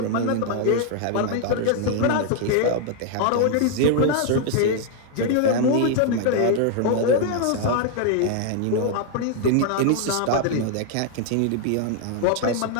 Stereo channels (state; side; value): different; both; correlation 0.00